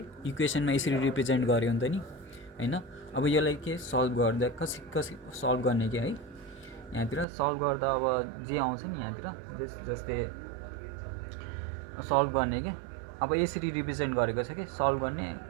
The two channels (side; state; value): left; drops out; at 7.2 s